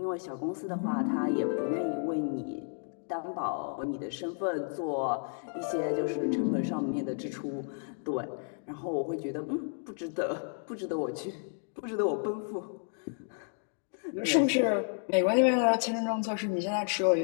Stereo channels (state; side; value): silent; right; 57 dB below the other